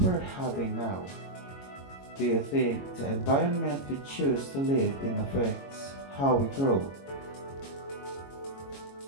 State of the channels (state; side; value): late; right; 22 ms